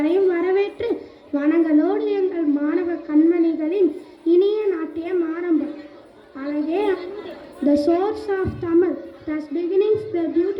வரவேற்று வணங்களோடு எங்கள் மாணவ கண்மணிகளின் இனிய நாட்டியம் ஆரம்பம். அழகே the source of Tamil, thus beginnings the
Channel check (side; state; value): both; identical; correlation 1.00